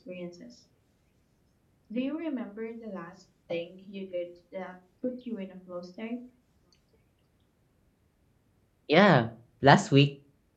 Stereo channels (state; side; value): identical; both; correlation 1.00